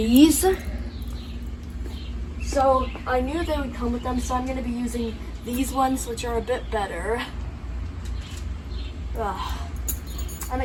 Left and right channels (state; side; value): identical; both; correlation 1.00